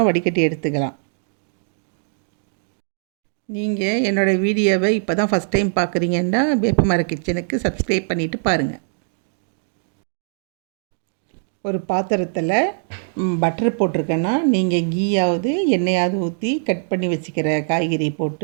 வடிகட்டி எடுத்துக்கலாம். நீங்கள் என்னோடய வீடியோவை இப்போ தான் ஃபஸ்ட் டைம் பார்க்குறீங்கன்னா வேப்பமர கிச்சனுக்கு சப்ஸ்கிரைப் பண்ணிவிட்டு பாருங்கள். ஒரு பாத்திரத்தில் பட்டர் போட்டிருக்கேன்னா நீங்கள் கீயாவது எண்ணெயாவது ஊற்றி கட் பண்ணி வச்சுக்கிற காய்கறி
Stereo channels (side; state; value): left; silent; digital silence